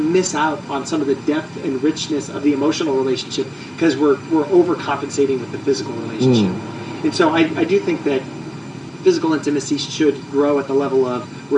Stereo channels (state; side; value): identical; both; correlation 1.00